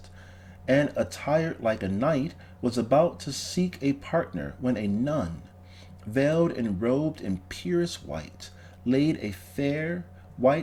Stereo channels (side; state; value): both; identical; correlation 1.00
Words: and attired like a knight, was about to seek a partner when a nun, veiled and robed in purest white, laid a fair